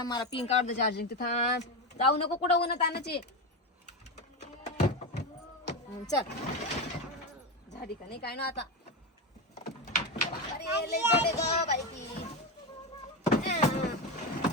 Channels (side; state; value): both; normal; correlation 0.15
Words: मला पिंक काढ दे चार्जिंग. ते थांब, जाऊ नको कुठं उन्हात आणायची. चल झाडी का नाही काय ना आता. अरे लय जड आहे गं बाई ती.